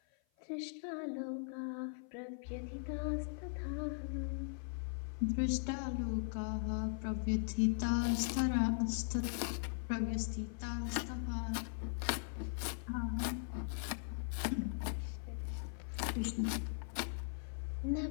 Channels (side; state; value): right; silent; 51 dB below the other